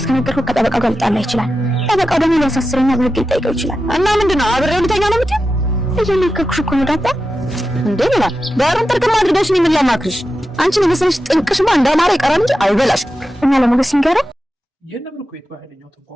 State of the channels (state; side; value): normal; both; correlation 0.91